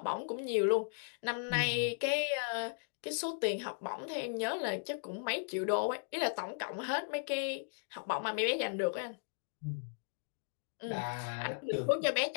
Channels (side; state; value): right; silent; digital silence